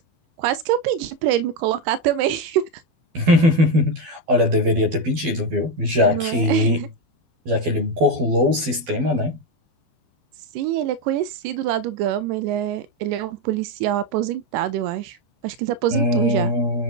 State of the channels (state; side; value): late; left; 12 ms